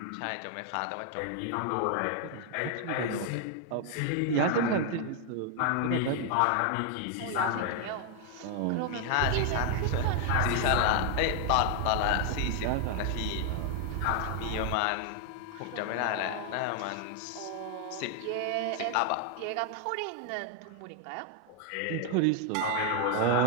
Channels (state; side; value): different; both; correlation 0.00